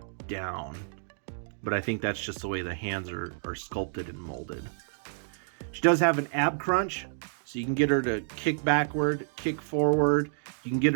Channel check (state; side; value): silent; left; digital silence